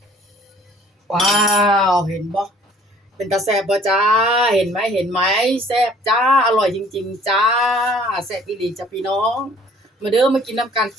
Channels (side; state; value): both; normal; correlation 0.55